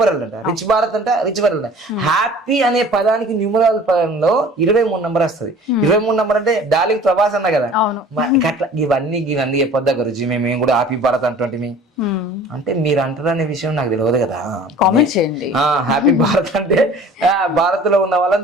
వరల్డ్ అంట, రిచ్ భారత్ అంట, రిచ్ వరల్డ్ అంట. హ్యాపీ అనే పదానికి న్యూమరల్ పదంలో 23 నంబర్ వస్తుంది. 23 నంబర్ అంటే డార్లింగ్ ప్రభాస్ అన్న కదా. అట్లా ఇవన్నీ చెప్పొద్దా గురుజీ, మేము కూడా హ్యాపీ భారత్ అంటుంటే అంటే మీరు అంటారనే విషయం నాకు తెలియదు కదా. కామెంట్ చేయండి. హ్యాపీ భారత్ అంటే భారత్ లో ఉన్న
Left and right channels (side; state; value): both; normal; correlation 0.46